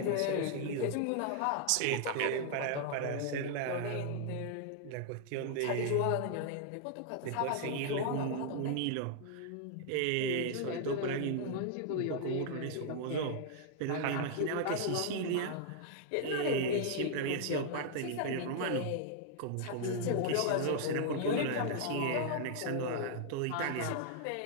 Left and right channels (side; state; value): both; different; correlation -0.01